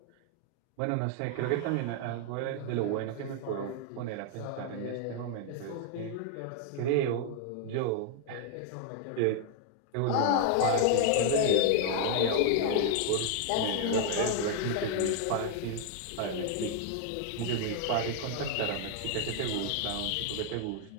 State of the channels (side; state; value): both; different; correlation 0.00